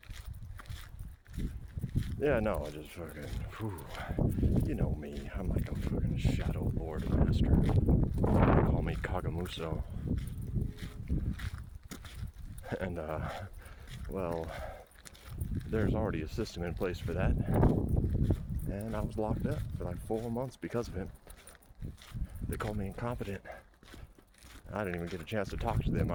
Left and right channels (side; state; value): both; identical; correlation 1.00